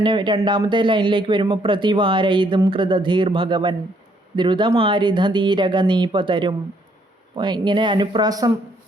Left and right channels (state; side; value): normal; both; correlation 0.68